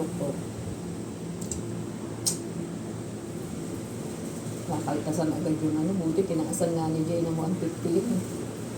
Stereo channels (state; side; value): identical; both; correlation 1.00